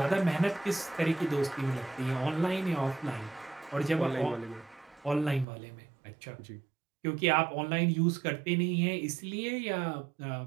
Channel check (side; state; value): left; drops out; at 5.5 s